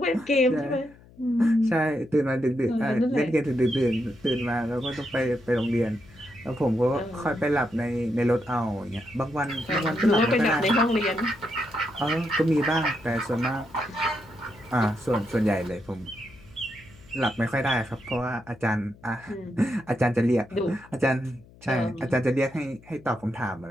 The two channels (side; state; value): left; noise; hum, 24 dB below the sound